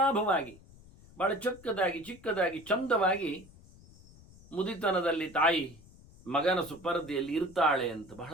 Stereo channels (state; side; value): noise; left; rumble, 23 dB below the sound